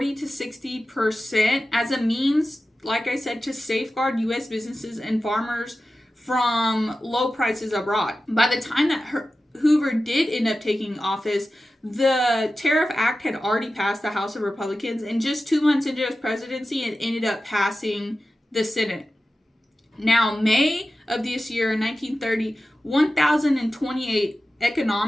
to 60% as a means, like I said, to safeguard U.S. businesses and farmers from low prices abroad. By the time that Hoover did end up taking office, the Tariff Act had already passed the House of Republicans, and just 2 months into his presidency, it ended up passing the Senate. Now, May of this year, in 1930, 1,028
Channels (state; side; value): normal; both; correlation 0.94